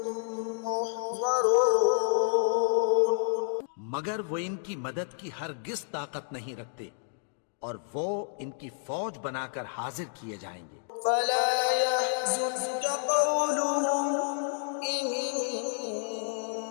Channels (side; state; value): right; silent; digital silence